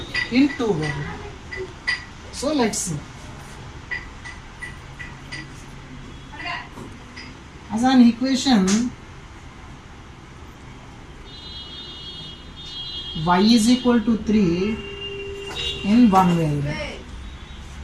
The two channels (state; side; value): identical; both; correlation 1.00